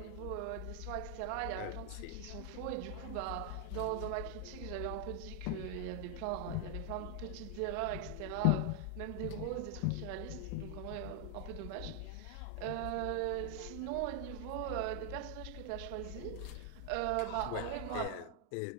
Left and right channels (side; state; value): both; different; correlation 0.00